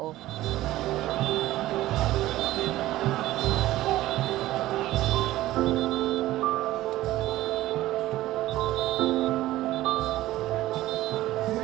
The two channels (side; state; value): left; quieter; 15.8 dB